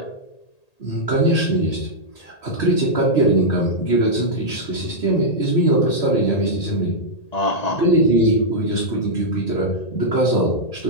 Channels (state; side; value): late; right; 1.8 ms